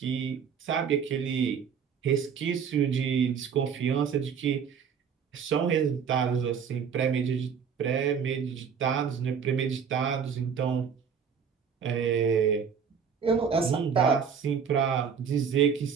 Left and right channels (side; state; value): left; quieter; 6.9 dB